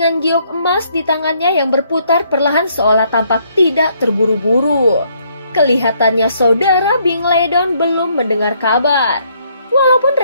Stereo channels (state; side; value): inverted; both; correlation -0.69